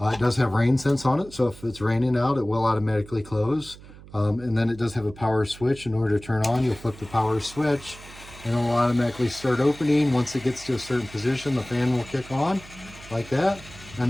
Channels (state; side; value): noise; right; hum, 19 dB below the sound